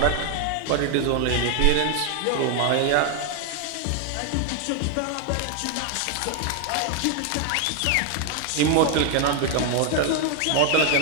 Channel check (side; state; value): both; different; correlation 0.01